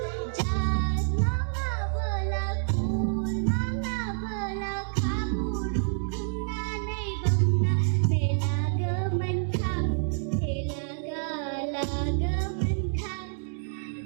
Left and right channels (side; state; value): left; silent; digital silence